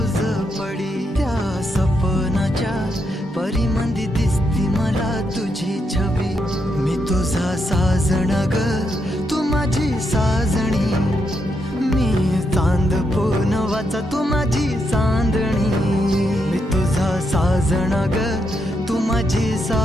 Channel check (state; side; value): normal; both; correlation 0.81